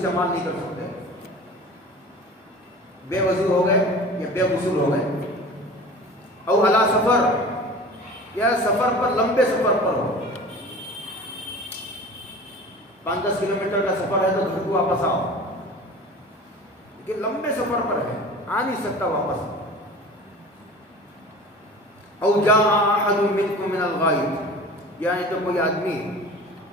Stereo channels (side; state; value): both; normal; correlation 0.39